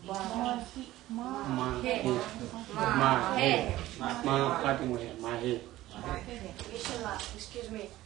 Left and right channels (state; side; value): quieter; left; 15.8 dB